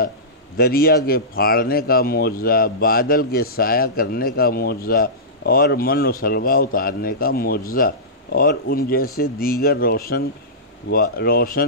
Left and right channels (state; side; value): normal; both; correlation -0.19